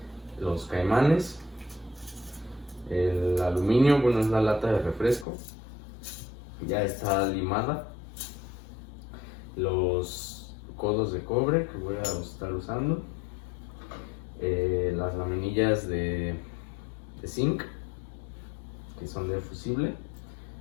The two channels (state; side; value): drops out; right; at 5.2 s